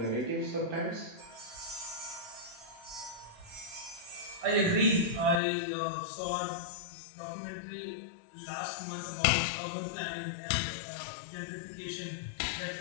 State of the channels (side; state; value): right; drops out; at 5.4 s